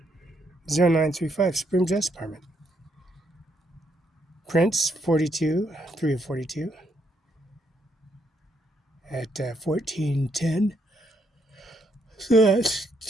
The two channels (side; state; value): both; normal; correlation 0.75